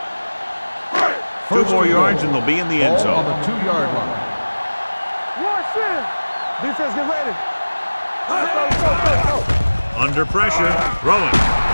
2 more yards and they'll be in the end Ball on zone. the 2-yard line. Watch in. Defense, get ready. Go. Under pressure, throwing.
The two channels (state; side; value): inverted; both; correlation -1.00